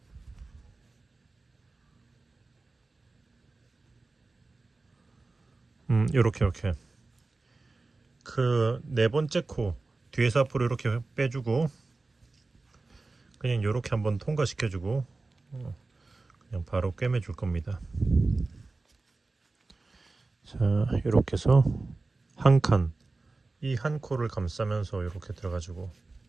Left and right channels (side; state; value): left; quieter; 3.5 dB